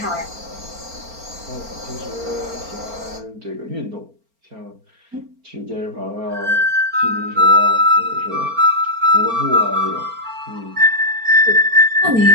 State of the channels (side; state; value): left; late; 4.4 ms